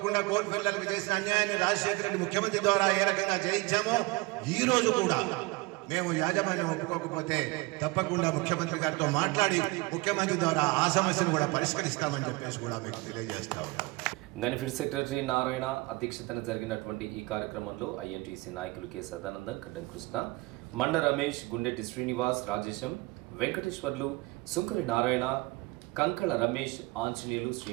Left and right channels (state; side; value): quieter; left; 23.6 dB